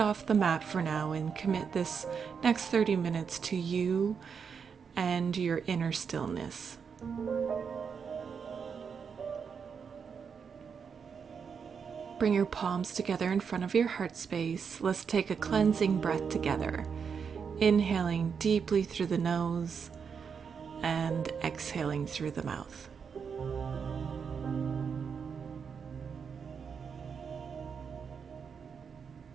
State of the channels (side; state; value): left; quieter; 6.4 dB